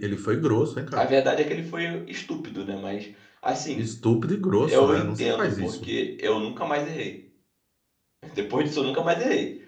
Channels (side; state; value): both; identical; correlation 1.00